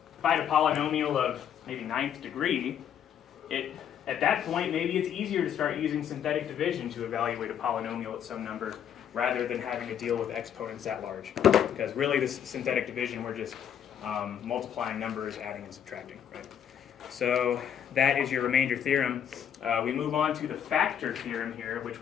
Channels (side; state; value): right; quieter; 9.1 dB